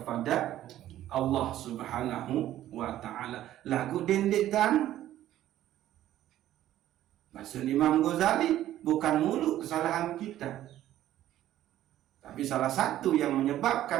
Allah Subhanahu wa ta'ala. Lagu dendek kan? Bahasa Imam Ghazali, bukan mulu kesalahan kita, tapi salah satu yang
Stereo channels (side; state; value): left; quieter; 13.1 dB